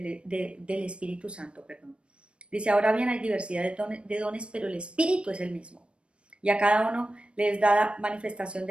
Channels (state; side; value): late; left; 0.058 ms